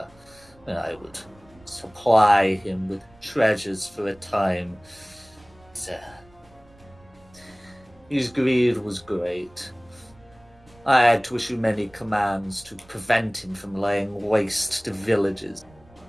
I would supply him with treasures for a time. His greed was great. I had to issue many commands to prevent him from laying waste to villages.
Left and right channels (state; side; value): noise; right; rumble, 27 dB below the sound